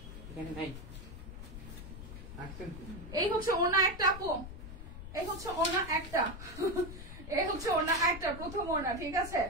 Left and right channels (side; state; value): left; noise; rumble, 11 dB below the sound